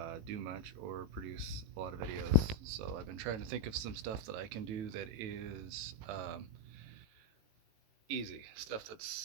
do much or produce a lot of videos. So I've been trying to think of some stuff that I can do that is easy, stuff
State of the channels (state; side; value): late; left; 18 ms